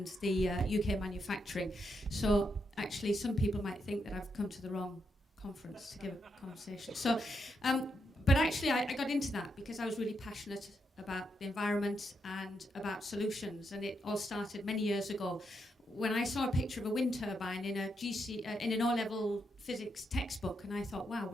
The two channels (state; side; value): normal; both; correlation 0.81